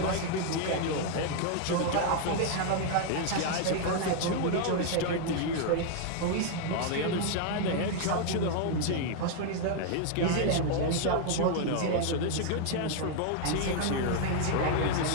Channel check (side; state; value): both; different; correlation 0.00